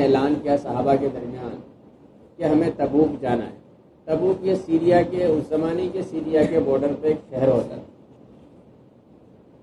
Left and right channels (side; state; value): both; identical; correlation 1.00